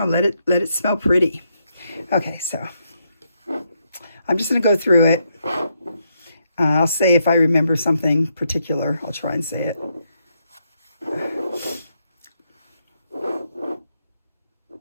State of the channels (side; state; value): both; inverted; correlation -0.78